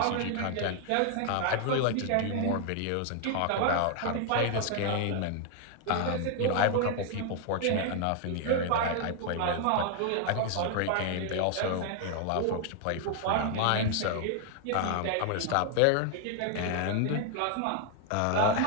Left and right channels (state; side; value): different; both; correlation 0.00